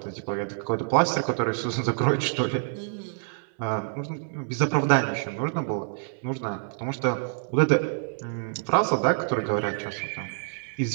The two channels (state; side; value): silent; left; digital silence